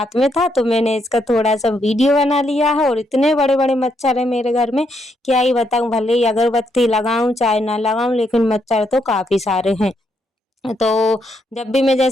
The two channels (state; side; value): normal; both; correlation 0.77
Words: में था तो मैंने इसका थोड़ा सा वीडियो बना लिया है। और इतने बड़े बड़े मच्छर है मेरे घर में, क्या ही बताऊँ। भले ही अगरबत्ती लगाऊं चाहे ना लगाऊं, लेकिन मच्छर तो काफ़ी सारे हैं। तो जब भी मैं